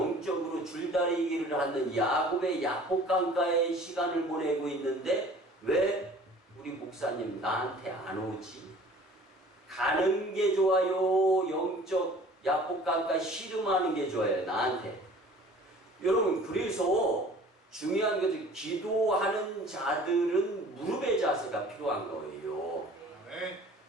줄다리기를 하는 야곱의 야복강가의 시간을 보내고 있는데 왜 우리 목사님 나한테 안 오지? 가는 게 좋아요? 영적 야복강가 씨름하는 게 좋아요? 나한테. 여러분 그래서 중요한 것은 기도하는 자들은 무릎의 자세가 필요한 거예요. 아멘.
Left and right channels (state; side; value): normal; both; correlation 0.48